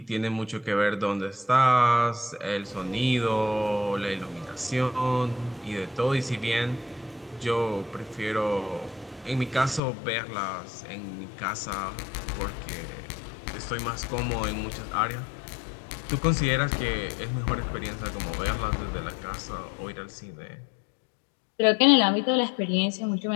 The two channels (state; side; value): drops out; right; at 9.8 s